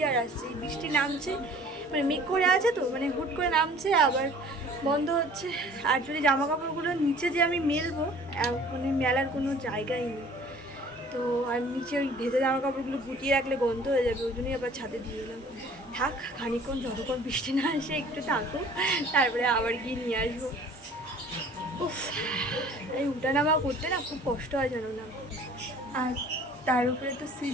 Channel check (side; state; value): both; normal; correlation 0.50